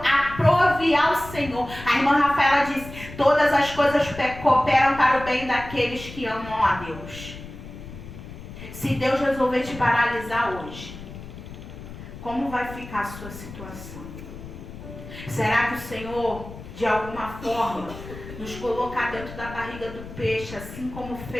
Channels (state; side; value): noise; left; rumble, 13 dB below the sound